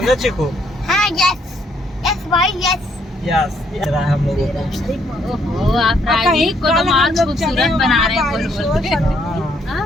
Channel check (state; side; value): normal; both; correlation 0.70